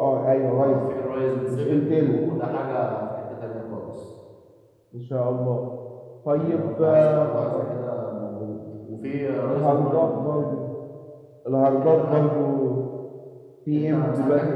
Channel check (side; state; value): both; identical; correlation 1.00